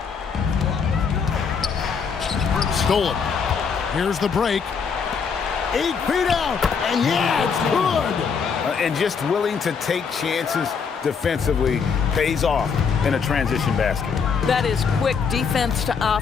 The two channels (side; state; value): right; quieter; 6.0 dB